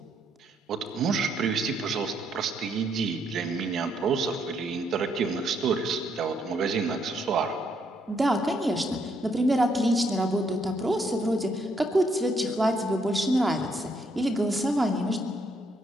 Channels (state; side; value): normal; both; correlation 0.73